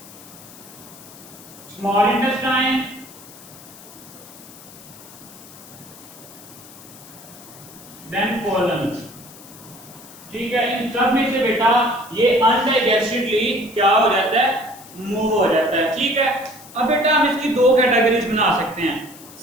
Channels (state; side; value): noise; left; hiss, 19 dB below the sound